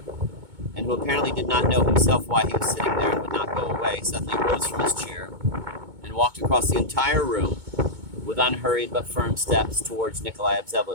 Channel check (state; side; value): late; left; 2.2 ms